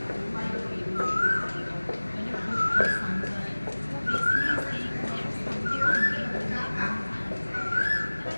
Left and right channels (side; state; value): both; inverted; correlation -1.00